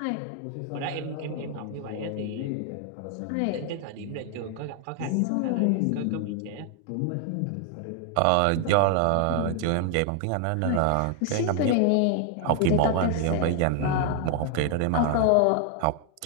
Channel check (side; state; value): both; different; correlation 0.00